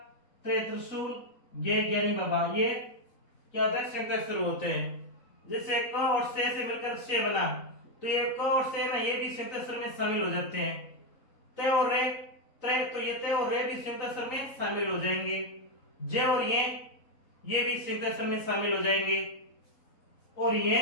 त्रे त्रिशूल, गे ज्ञानी बाबा, ये क्या होता है? संयुक्त अक्षर होते हैं। जैसे क और से मिलकर से बना, तो ये क और से ना, ये भी संयुक्त अक्षर में शामिल हो जाते हैं। ते और रे, त्रे, तो ये ते और रे भी संयुक्त अक्षर में शामिल हो जाएंगे। जे और ये भी संयुक्त अक्षर में शामिल हो जाएंगे। और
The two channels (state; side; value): late; right; 3.9 ms